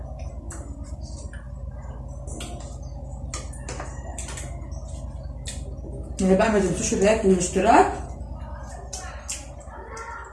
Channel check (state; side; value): identical; both; correlation 1.00